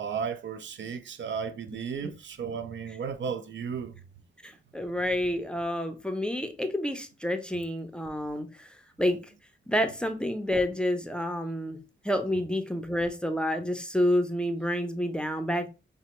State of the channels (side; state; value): both; normal; correlation 0.77